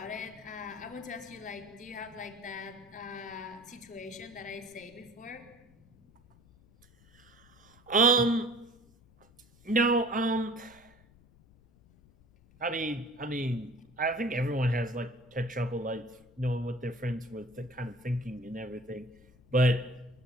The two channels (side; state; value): left; noise; rumble, 27 dB below the sound